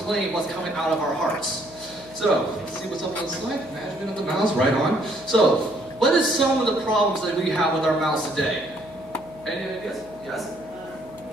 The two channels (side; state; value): both; normal; correlation 0.66